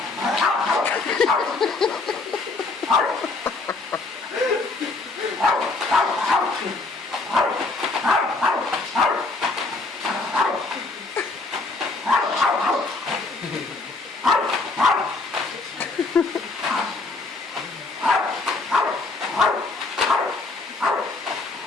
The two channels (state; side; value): quieter; right; 3.6 dB